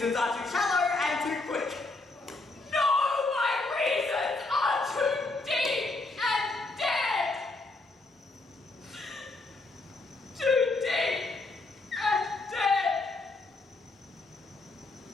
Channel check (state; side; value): quieter; right; 3.2 dB